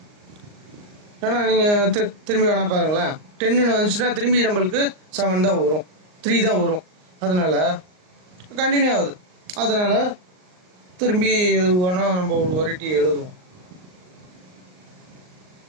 ஏன்னா நீங்கள் திரும்பி வேணா பாருங்களேன், 10 வந்துச்சுன்னா திரும்பி நம்மளுக்கு 7 தான் வரும், 3 தான் வரும். அதனால் கண்டினியூ ஆகுது. அதனால் திரும்பி எது வேணால் நம்ம ஒரு வெரைட்டி எழுதுவோம்.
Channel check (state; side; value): late; left; 38 ms